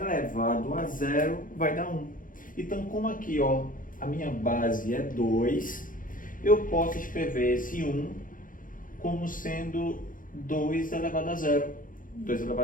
a zero vai dar 1. Então, como aqui, ó, a minha base é 2, eu posso escrever esse 1 como sendo 2 elevado a zero. 2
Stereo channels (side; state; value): right; late; 0.39 ms